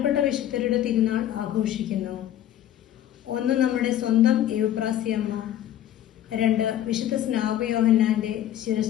വിശുദ്ധരുടെ തിരുനാൾ ആഘോഷിക്കുന്നു. ഒന്ന് നമ്മുടെ സ്വന്തം എവുപ്രാസിയമ്മ, രണ്ട് വിശുദ്ധ സ്നാപയോഹന്നാന്റെ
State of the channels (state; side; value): quieter; right; 11.7 dB